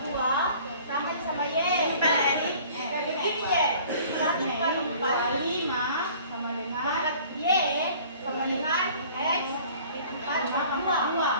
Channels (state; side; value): inverted; both; correlation -0.50